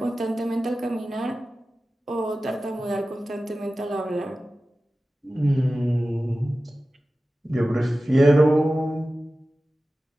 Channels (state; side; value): normal; both; correlation 0.95